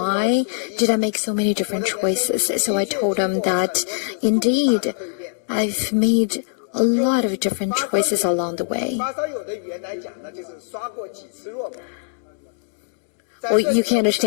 did I make so many different choices? So I told him that, indeed, I've made a lot of different choices along the way. Well, you can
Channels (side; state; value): right; silent; digital silence